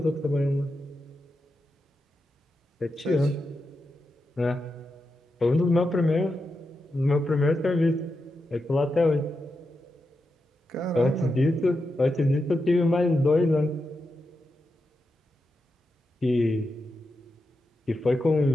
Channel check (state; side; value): normal; both; correlation 0.88